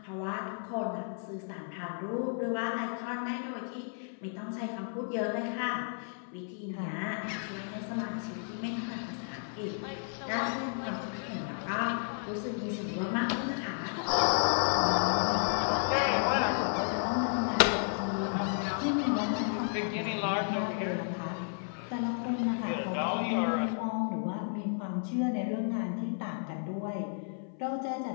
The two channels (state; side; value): silent; right; 56 dB below the other